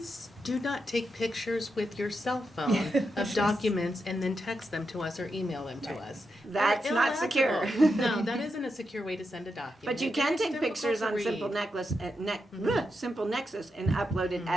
do not take pictures with your cell phone of documents and then text them to us or email them to us. That's They're not secure. illegible. No, that isn't a secure way to send a document. But you It can is take difficult pictures to on read. Simple Nexus and upload it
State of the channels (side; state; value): both; normal; correlation 0.86